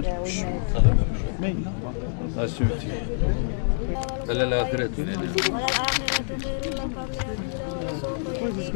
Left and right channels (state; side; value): silent; right; digital silence